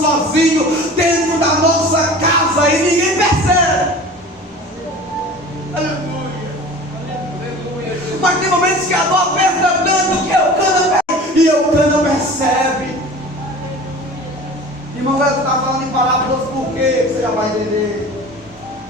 dentro da nossa casa e ninguém percebe. Aleluia. Mas tem momentos que a dor aperta tanto que Eucana percebe.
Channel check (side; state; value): both; normal; correlation 0.40